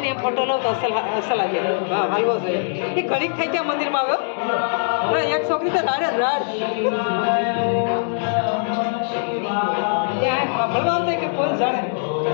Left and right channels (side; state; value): right; silent; digital silence